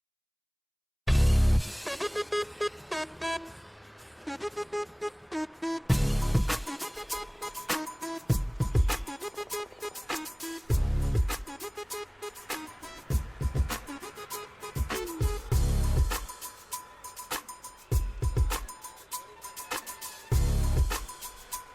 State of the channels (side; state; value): both; identical; correlation 1.00